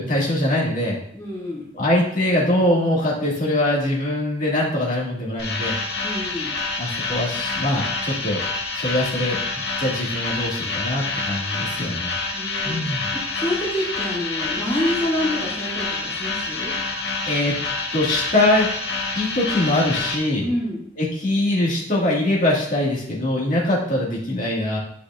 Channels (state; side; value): normal; both; correlation 0.38